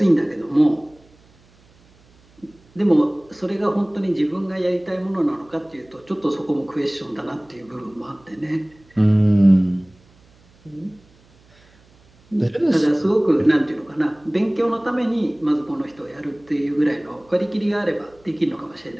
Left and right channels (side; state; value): right; noise; hum, 30 dB below the sound